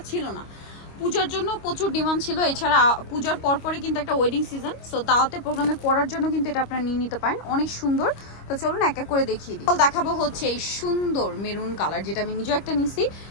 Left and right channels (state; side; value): late; right; 25 ms